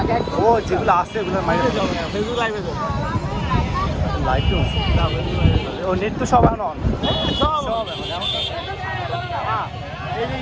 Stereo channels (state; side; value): identical; both; correlation 1.00